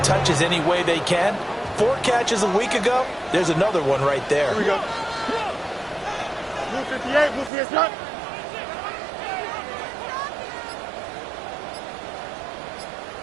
touches any way they can. 4 catches a week ago. There's another one right there. Here we go. Blue 58, blue 58, shot.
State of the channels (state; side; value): drops out; left; at 7.5 s